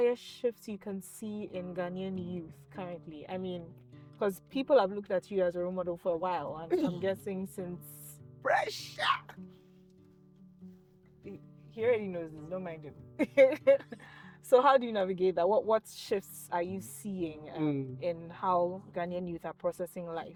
shift you can see in Ghanaian youth currently? I mean, because people have looked at you as a role model for a while, and I'm guessing since pressure. He already knows this, don't mind him. So how do you navigate that? What shifts are you seeing in how Ghanaian youth are processing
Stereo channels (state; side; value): identical; both; correlation 1.00